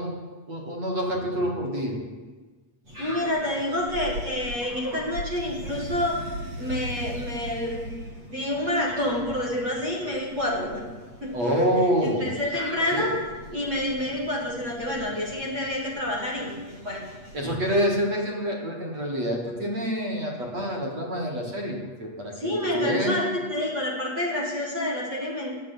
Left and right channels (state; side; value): late; left; 8.3 ms